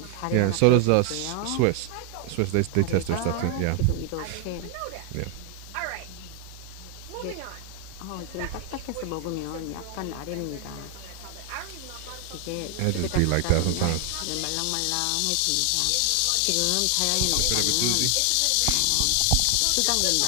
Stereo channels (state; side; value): different; both; correlation 0.00